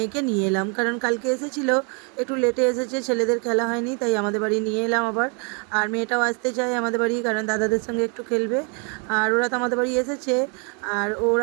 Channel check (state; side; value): quieter; left; 36.0 dB